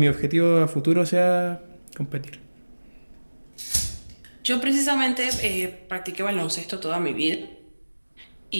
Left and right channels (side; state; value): both; inverted; correlation -1.00